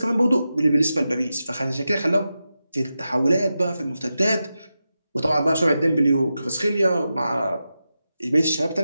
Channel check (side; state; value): both; inverted; correlation -0.91